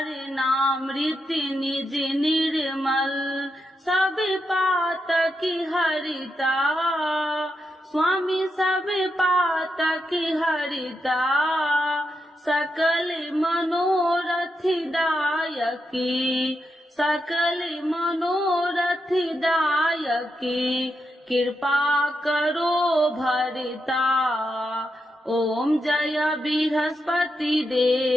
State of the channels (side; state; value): both; normal; correlation 0.85